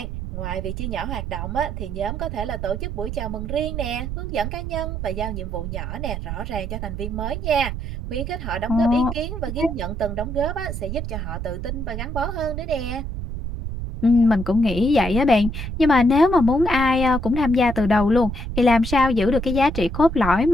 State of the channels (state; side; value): noise; right; rumble, 5 dB below the sound